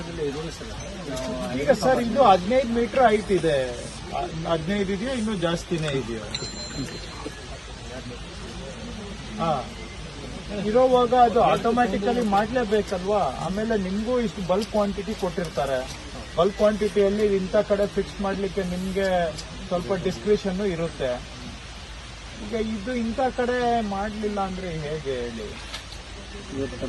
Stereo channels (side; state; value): both; identical; correlation 1.00